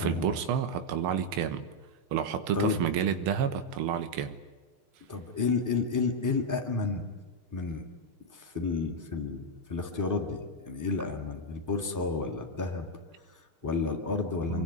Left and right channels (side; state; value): left; late; 6.6 ms